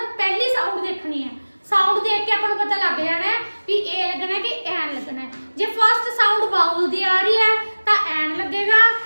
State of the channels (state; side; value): inverted; both; correlation -1.00